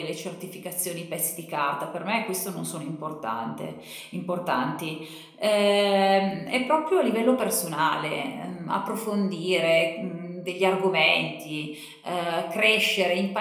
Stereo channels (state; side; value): identical; both; correlation 1.00